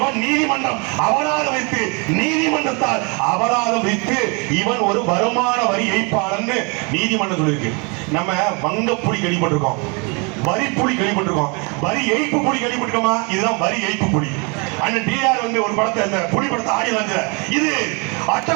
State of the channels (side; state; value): left; quieter; 32.0 dB